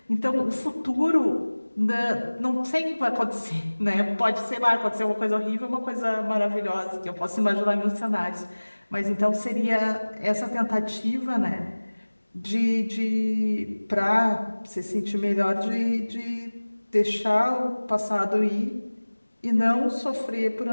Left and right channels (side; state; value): both; inverted; correlation -1.00